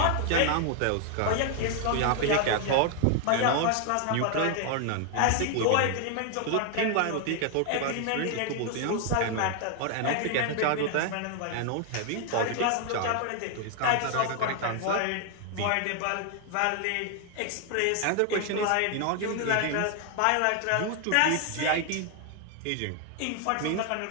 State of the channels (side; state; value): both; different; correlation 0.00